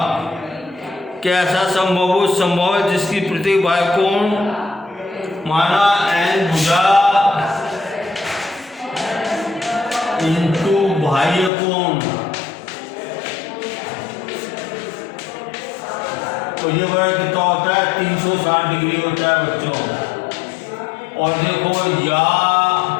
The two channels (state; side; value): drops out; right; at 11.5 s